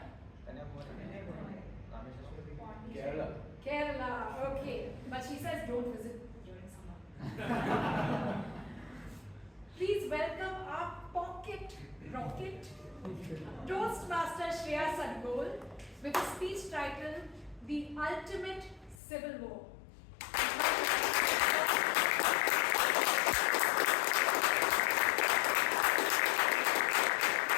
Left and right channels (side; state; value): right; drops out; at 19.0 s